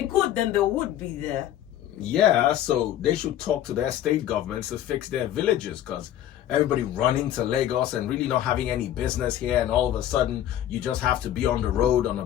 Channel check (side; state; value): right; quieter; 11.9 dB